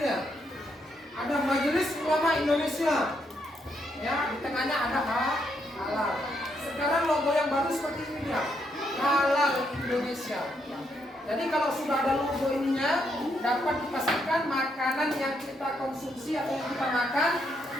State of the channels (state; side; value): normal; both; correlation 0.77